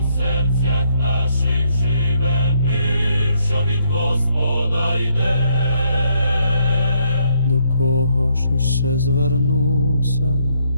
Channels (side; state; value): both; inverted; correlation -0.73